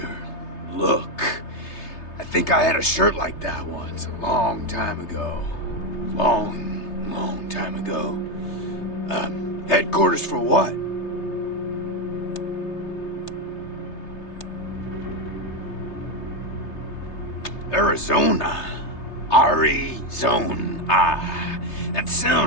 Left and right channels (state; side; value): late; right; 3.3 ms